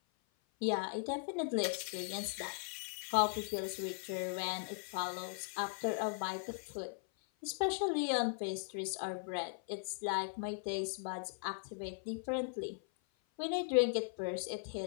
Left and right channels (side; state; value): right; silent; 52 dB below the other